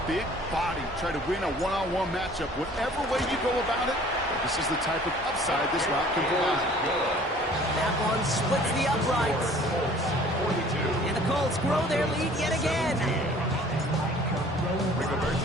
big body, try to win a one-on-one matchup. Whatever way you go about it, this is the type of upside this route can provide. That one splits the uprights. And the Colts grow their lead yet again.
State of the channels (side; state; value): both; normal; correlation 0.51